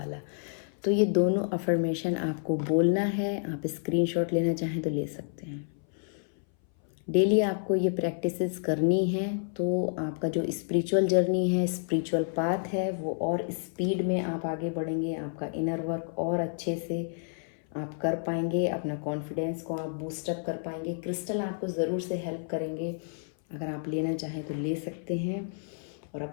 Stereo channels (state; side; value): silent; right; 58 dB below the other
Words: तो ये दोनों अफर्मेशन आपको बोलना है, आप स्क्रीनशॉट लेना चाहें तो ले सकते हैं। डेली आपको ये प्रैक्टिसेस करनी है तो आपका जो स्पिरिचुअल जर्नी है, स्पिरिचुअल पाथ है, वो और स्पीड में आप आगे बढ़ेंगे, आपका इनर वर्क और अच्छे से आप कर पाएंगे, अपना कॉन्फिडेंस को आप बूस्टअप कर पाएंगे। क्रिस्टल आपको ज़रूर से हेल्प करेंगे, अगर आप लेना चाहें तो ले सकते हैं और